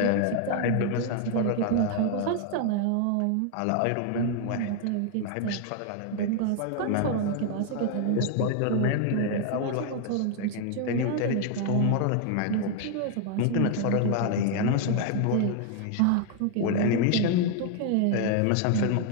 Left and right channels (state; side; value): different; both; correlation 0.00